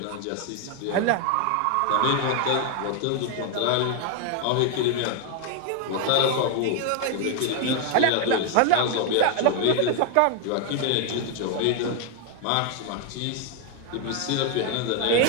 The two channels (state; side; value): different; both; correlation 0.01